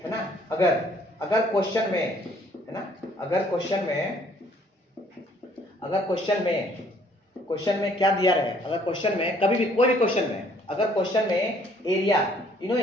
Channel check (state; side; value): normal; both; correlation 0.61